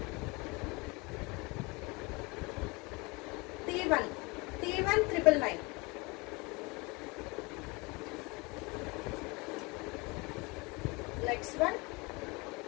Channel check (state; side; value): quieter; right; 26.5 dB